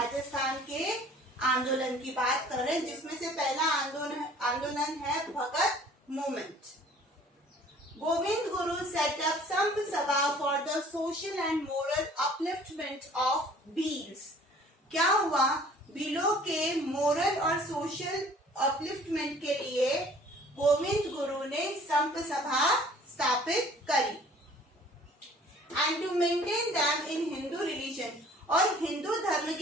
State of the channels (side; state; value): both; normal; correlation 0.52